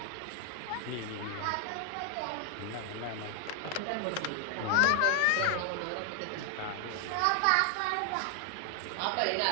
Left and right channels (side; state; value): both; different; correlation 0.00